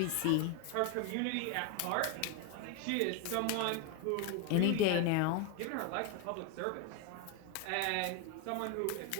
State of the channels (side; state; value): both; different; correlation 0.01